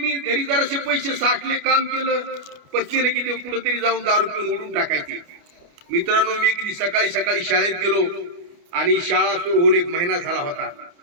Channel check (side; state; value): left; late; 29 ms